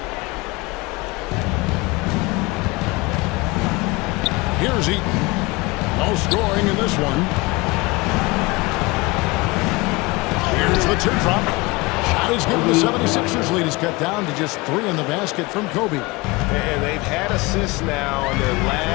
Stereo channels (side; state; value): right; quieter; 23.9 dB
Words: Here's Eaton. No scoring in this one. Here's the teardrop. Shot is given. The 76ers lead is cut down to just 3 in the basket from Kobe. And they've had assists now on their